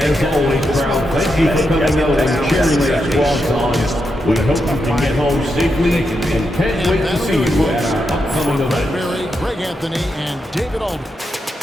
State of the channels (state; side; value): normal; both; correlation 0.85